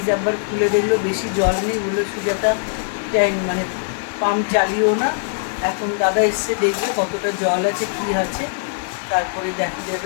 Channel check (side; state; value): right; silent; 65 dB below the other